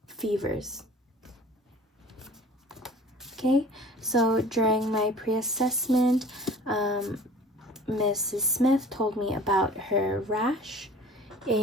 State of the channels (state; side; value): normal; both; correlation 0.45